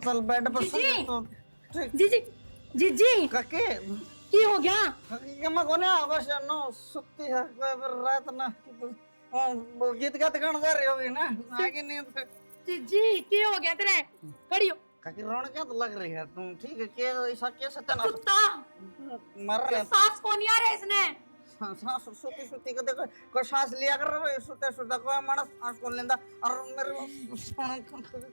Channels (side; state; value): both; inverted; correlation -1.00